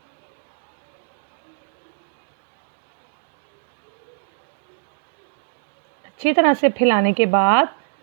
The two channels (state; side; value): silent; left; digital silence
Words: अच्छी तरह से फैलाने के बाद